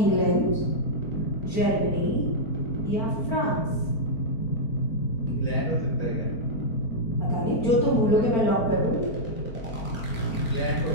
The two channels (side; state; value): right; late; 4.5 ms